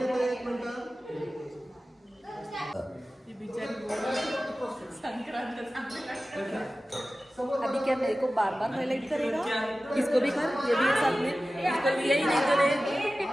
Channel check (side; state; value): both; normal; correlation 0.95